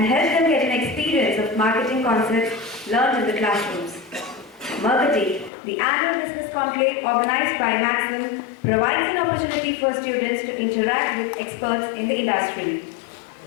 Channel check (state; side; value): drops out; right; at 5.5 s